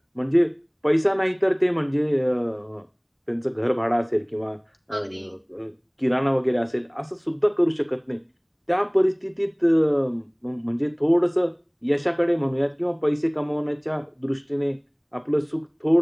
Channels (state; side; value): identical; both; correlation 1.00